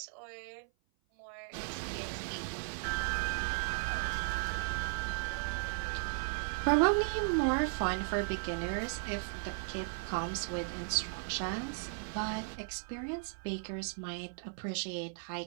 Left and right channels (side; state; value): left; silent; 54 dB below the other